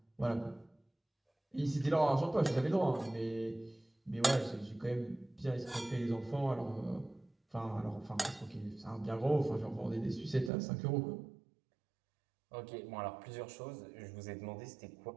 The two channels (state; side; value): drops out; left; at 10.5 s